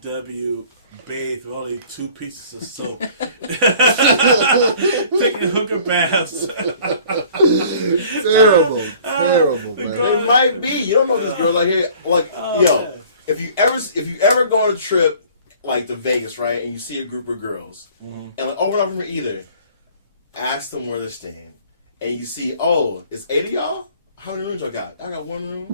bathe with only 2 pieces of soap. Taking hooker baths. Terrible, man. It might be. You don't know if this girl's out here. Like, Yeah. if you ever go on a trip like to Vegas, right, and you see a group of girls, and like, oh, we're not from here either. Ask them where they're staying, and you see, oh, it's 8 of y'all. How many rooms y'all got? I got 1 room.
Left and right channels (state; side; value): inverted; both; correlation -0.52